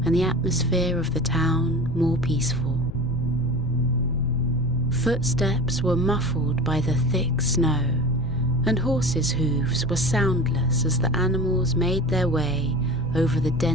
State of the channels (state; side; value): noise; left; rumble, 10 dB below the sound